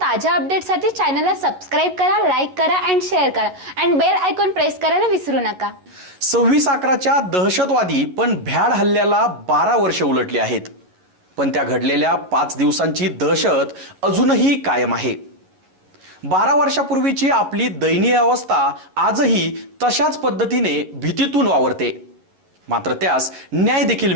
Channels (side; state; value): left; late; 11 ms